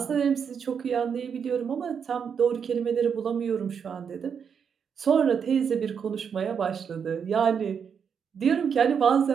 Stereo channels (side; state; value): left; quieter; 7.0 dB